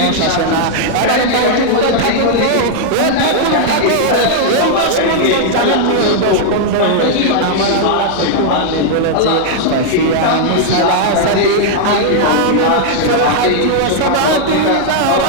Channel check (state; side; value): different; both; correlation -0.01